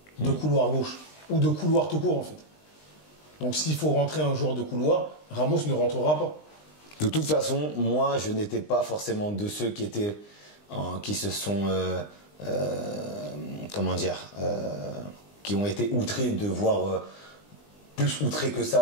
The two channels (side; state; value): right; late; 20 ms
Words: De couloir gauche. Ou de couloir tout court, en fait. Donc, s'il faut rentrer un joueur de couloir, Ramos ne rentrera pas. De toute façon, moi je n'étais pas forcément de ceux qui se sont comment dire, qui ont été outrés de voir, plus outrés que